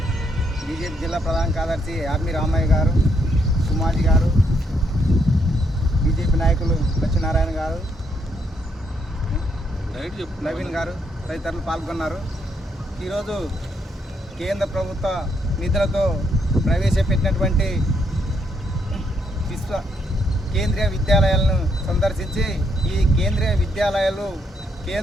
బీజేపీ జిల్లా ప్రధాన కార్యదర్శి ఆర్మీ రామయ్య గారు, సుమాజీ గారు, బీజేపీ నాయకులు లక్ష్మీనారాయణ గారు, నవీన్ గారు తదితరులు పాల్గొన్నారు. ఈరోజు కేంద్ర ప్రభుత్వ నిధులతో ప్రవేశపెట్టినటువంటి కేంద్రీయ విద్యాలయాలను సందర్శించి ఈ కేంద్రీయ విద్యాలయాలు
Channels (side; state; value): both; normal; correlation 0.74